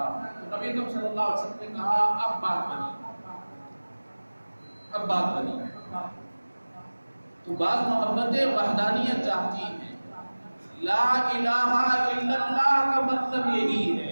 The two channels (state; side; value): inverted; both; correlation -1.00